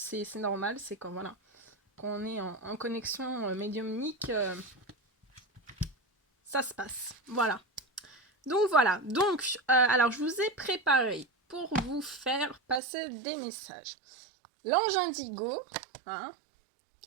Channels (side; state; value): left; drops out; at 12.8 s